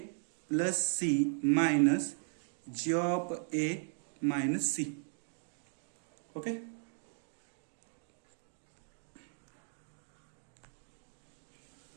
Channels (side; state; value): left; silent; digital silence